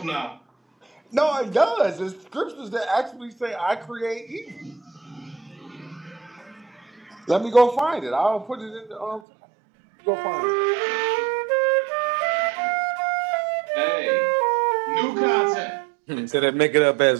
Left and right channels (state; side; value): drops out; left; at 9.2 s